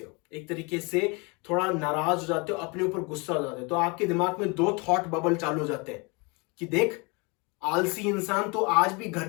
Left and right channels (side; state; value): right; quieter; 29.5 dB